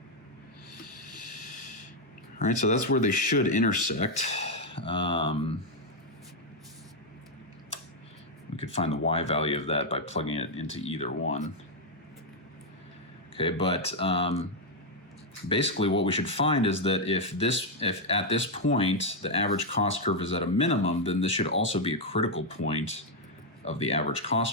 All right, so that's where they should intersect. We could find the y value of that by plugging it into either one. Okay, but basically what we should find is that if at this point the average cost curve is at a minimum, then this should also be a critical point of the average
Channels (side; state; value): both; normal; correlation 0.00